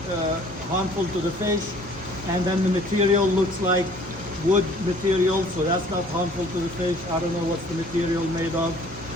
harmful to the fish. And then the material looks like wood material, so that's not harmful to the fish. I don't know what's the material made of,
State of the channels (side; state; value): both; normal; correlation 0.54